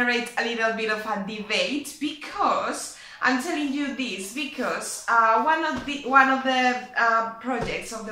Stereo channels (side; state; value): both; identical; correlation 1.00